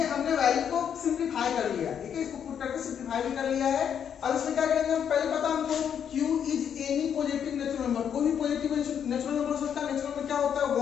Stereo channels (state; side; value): quieter; right; 8.3 dB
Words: हमने वैल्यू को सिंप्लीफाई कर लिया, ठीक है, इसको पुट करके सिंप्लीफाई भी कर लिया है। अब इसमें क्या करेंगे, हम पहले पता हमको q is any positive natural number. कोई भी पॉजिटिव नेचुरल नंबर हो सकता है। नेचुरल नंबर क्या होता है,